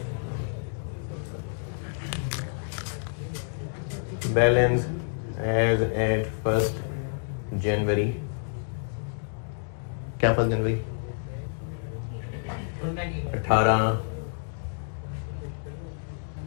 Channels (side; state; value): right; silent; digital silence